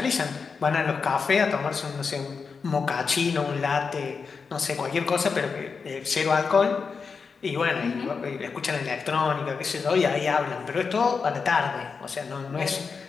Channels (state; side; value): quieter; right; 5.3 dB